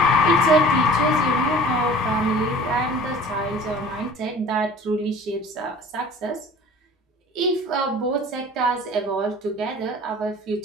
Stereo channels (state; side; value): normal; both; correlation 0.46